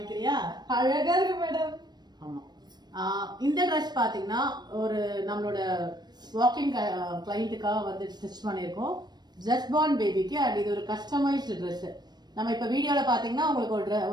அழகா இருக்கு மேடம். ஆமா, இந்த ட்ரெஸ் பாத்தீங்கன்னா ஒரு நம்மளோட வாக்கிங் கிளைண்ட்டுக்காக வந்து ஸ்டிச் பண்ணிருக்கோம். ஜஸ்ட் பார்ன் பேபிக்கு. அண்ட் இது ஒரு கஸ்டமைஸ்டு ட்ரெஸ். நம்ம இப்ப வீடியோல பாத்தீங்கன்னா உங்களுக்கு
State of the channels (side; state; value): left; late; 0.20 ms